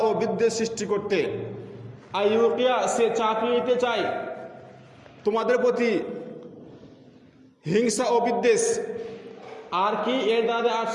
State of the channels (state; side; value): identical; both; correlation 1.00